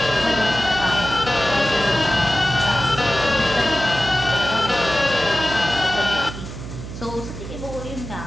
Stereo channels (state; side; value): noise; right; hum, 10 dB below the sound